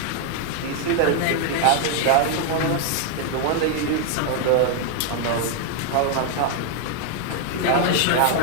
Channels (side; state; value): both; different; correlation 0.00